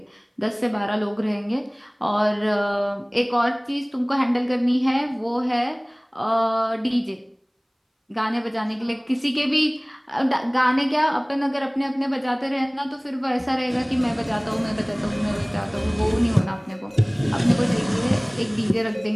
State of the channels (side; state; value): both; identical; correlation 1.00